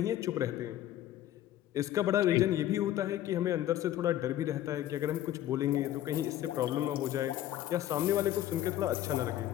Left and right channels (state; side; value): quieter; right; 12.8 dB